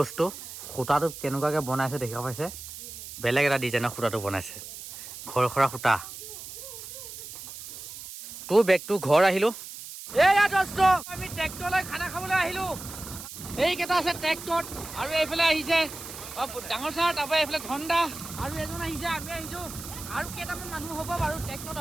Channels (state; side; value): noise; right; hiss, 12 dB below the sound